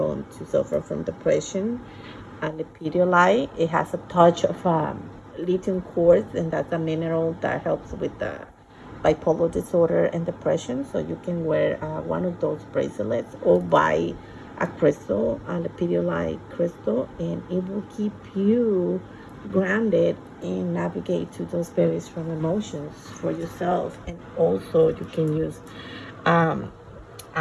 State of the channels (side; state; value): both; identical; correlation 1.00